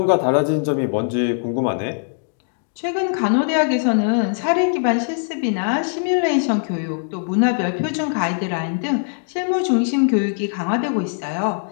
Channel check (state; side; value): silent; right; digital silence